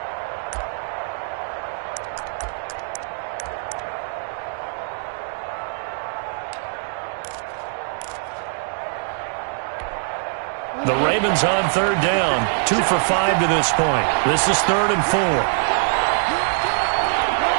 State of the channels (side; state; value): left; silent; digital silence